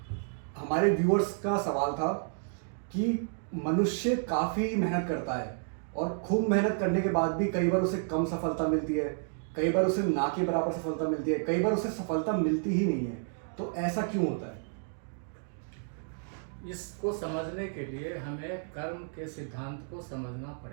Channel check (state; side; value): silent; left; digital silence